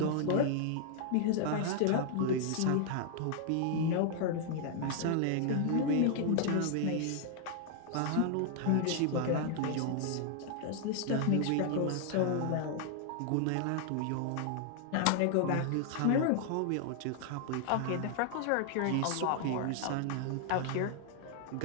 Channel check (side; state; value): both; different; correlation 0.00